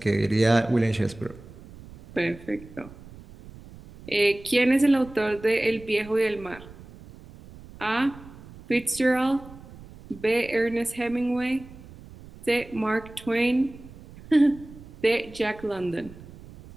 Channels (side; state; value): right; noise; rumble, 19 dB below the sound